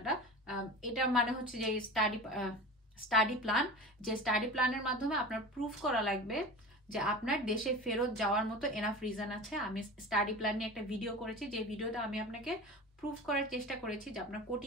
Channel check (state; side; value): normal; both; correlation 0.33